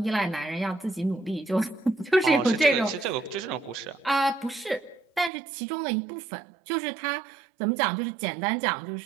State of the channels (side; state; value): left; drops out; at 5.3 s